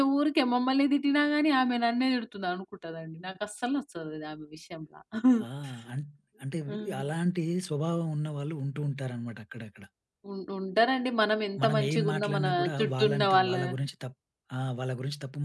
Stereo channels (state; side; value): identical; both; correlation 1.00